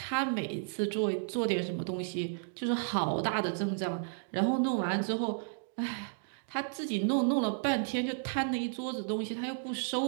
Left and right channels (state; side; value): silent; left; digital silence